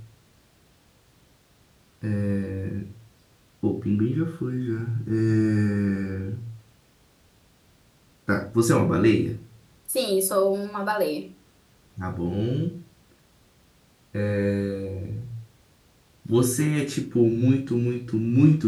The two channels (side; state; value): both; identical; correlation 1.00